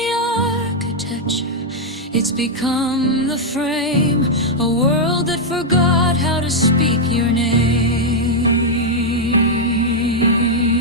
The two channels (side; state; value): both; normal; correlation -0.02